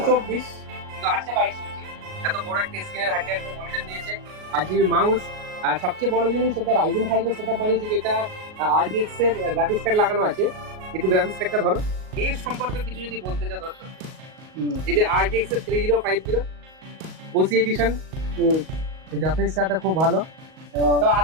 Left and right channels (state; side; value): late; left; 38 ms